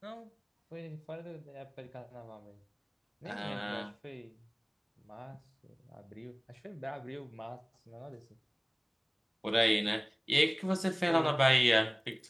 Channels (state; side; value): identical; both; correlation 1.00